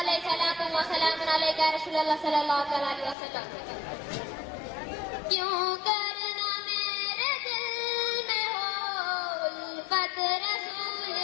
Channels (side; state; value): right; drops out; at 3.2 s